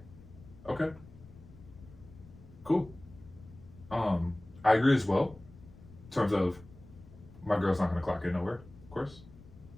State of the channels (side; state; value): left; noise; rumble, 20 dB below the sound